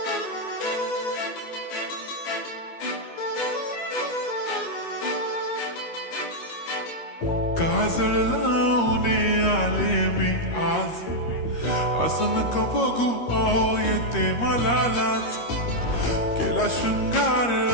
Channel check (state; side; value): late; right; 13 ms